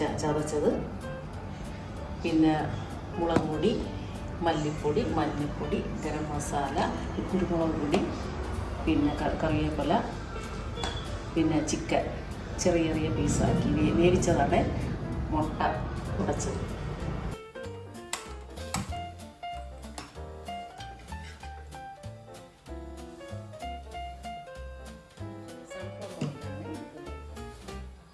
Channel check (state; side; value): identical; both; correlation 1.00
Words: ചതച്ചത്, പിന്നെ മുളക് പൊടി, മല്ലിപ്പൊടി, മഞ്ഞൾപ്പൊടി, ഗരം മസാല, കുരുമുളക് പൊടി, പിന്നെ കറിവേപ്പില, പിന്നെ ചിക്കൻ ചെറിയ ചെറിയ പീസാക്കി വേവിച്ചതാണ്, മുട്ട ഉടച്ചത്.